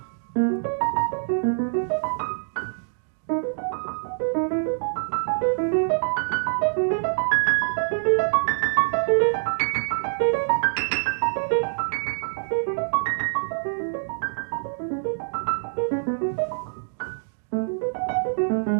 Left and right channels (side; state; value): left; silent; digital silence